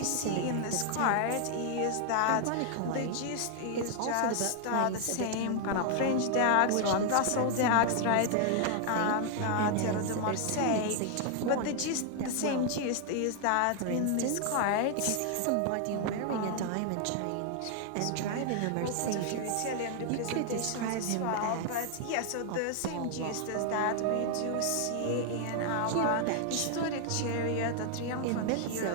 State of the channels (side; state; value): both; different; correlation 0.00